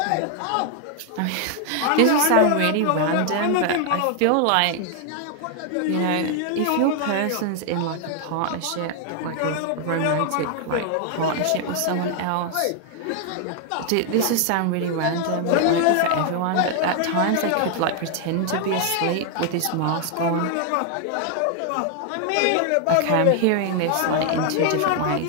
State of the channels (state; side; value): different; both; correlation 0.00